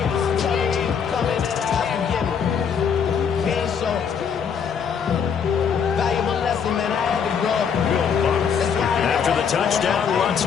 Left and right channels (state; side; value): quieter; right; 7.0 dB